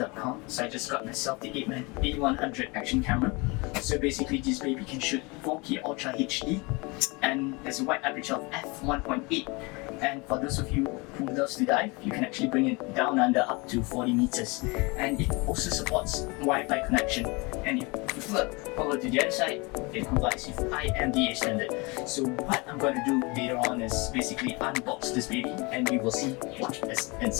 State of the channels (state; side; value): quieter; right; 27.2 dB